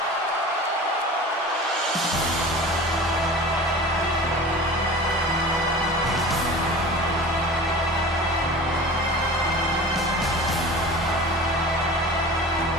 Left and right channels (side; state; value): both; normal; correlation 0.38